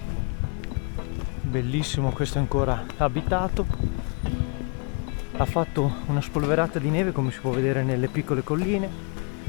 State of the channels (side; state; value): right; quieter; 36.0 dB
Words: Bellissimo, questo è ancora abitato. Ha fatto una spolverata di neve, come si può vedere nelle piccole colline,